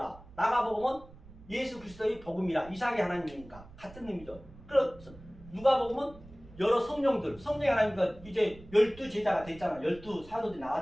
마가복음은 예수 그리스도의 복음이라. 이삭의 하나님이니까 같은 의미죠. 그래서 누가복음은 여러 성령들, 성령의 하나님과 이제 12제자가 됐잖아요. 12사도들이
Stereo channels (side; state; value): right; noise; rumble, 20 dB below the sound